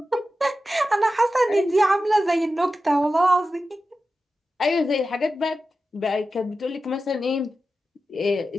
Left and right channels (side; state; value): both; normal; correlation 0.93